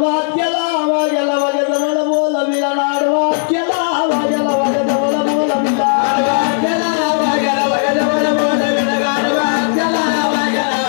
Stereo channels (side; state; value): right; silent; digital silence